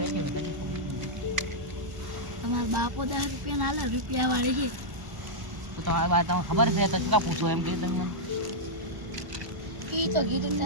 તમારા બાપો 10 રૂપિયા ના લે રૂપિયા વાળી છે તો તમારી વાત તમને ખબર છે તો શું કા પૂછો એમ કીધું તમે મને ઈ તો કીધું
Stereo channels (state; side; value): late; left; 1.0 ms